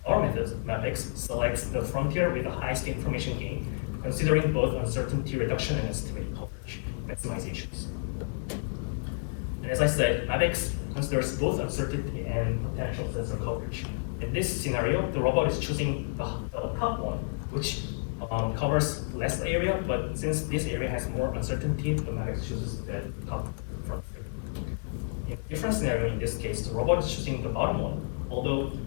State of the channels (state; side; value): silent; right; digital silence